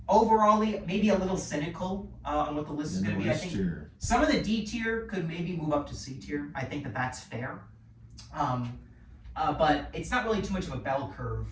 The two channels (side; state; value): both; identical; correlation 1.00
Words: overall, maybe a little cynical on what the list is going to be. I think some of the D tier could maybe move up to C tier. I think that's fair. But it's not really too much of a bell curve